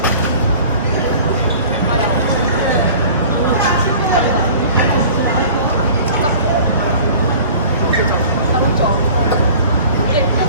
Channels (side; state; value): both; inverted; correlation -0.45